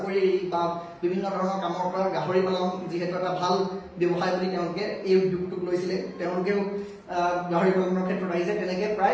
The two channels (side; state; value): both; identical; correlation 1.00